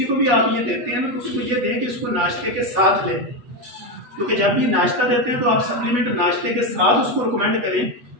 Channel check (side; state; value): left; late; 8.1 ms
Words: को भी आप ये देते हैं ना, तो उसको ये दें कि इसको नाश्ते के साथ लें, क्योंकि जब भी नाश्ता देते हैं तो आप सप्लीमेंट नाश्ते के साथ उसको रिकमेंड करें,